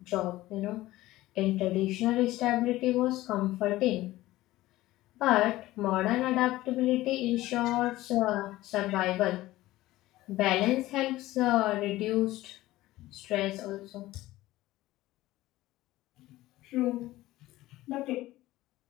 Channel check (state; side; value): quieter; right; 16.9 dB